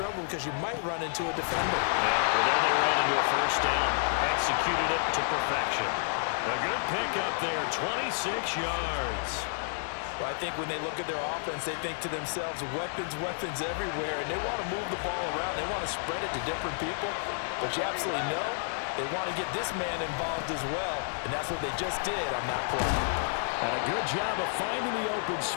because you might run into a defender. Yeah, well, there they ran into a first down. Executed it to perfection. A good pickup there, 26 yards. Well, I think when they look at their offense, they think to themselves, weapons, weapons everywhere, and they want to move the ball around. They want to spread it to different people, but you absolutely know they want to get this man involved as well, and that's what they just did on that play. And a good job of finding the open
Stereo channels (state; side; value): silent; right; 58 dB below the other